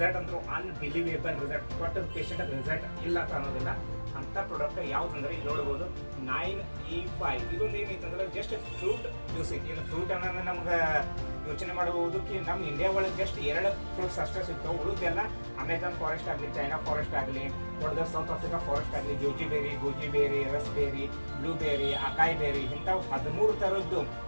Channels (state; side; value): inverted; both; correlation -1.00